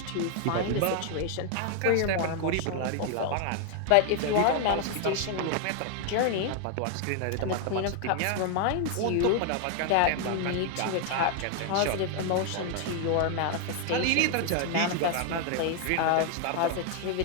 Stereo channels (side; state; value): both; different; correlation 0.00